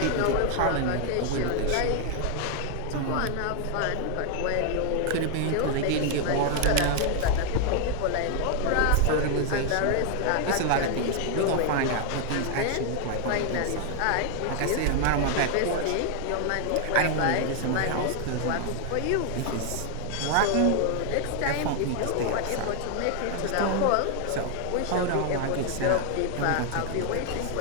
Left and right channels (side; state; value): both; different; correlation 0.00